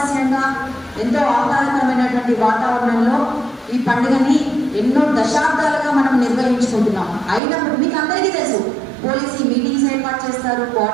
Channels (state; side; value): drops out; left; at 7.4 s